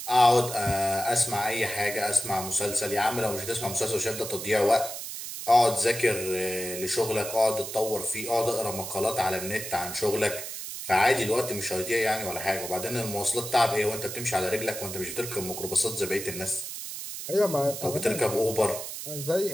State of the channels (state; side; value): noise; right; hiss, 8 dB below the sound